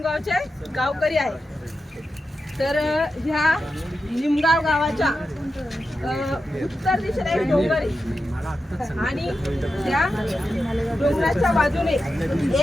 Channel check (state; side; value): normal; both; correlation 0.90